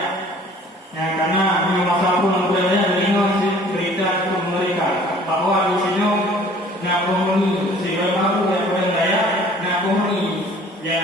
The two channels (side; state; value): both; normal; correlation 0.52